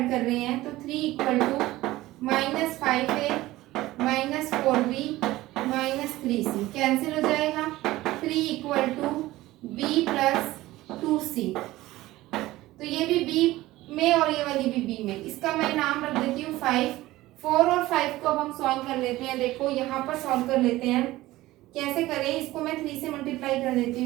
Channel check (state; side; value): quieter; left; 17.3 dB